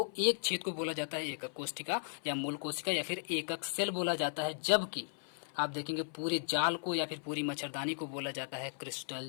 एक छेद को बोला जाता है एकक कोशिका या मूल कोशिका या फिर एकक सेल बोला जाता है, जबकि आप देखेंगे पूरे जाल को या फिर पूरी मच्छरदानी को बोला जाता है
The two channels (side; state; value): right; silent; 54 dB below the other